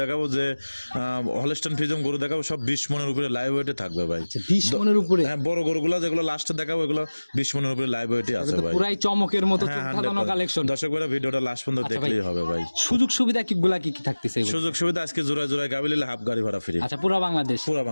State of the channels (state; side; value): inverted; both; correlation -1.00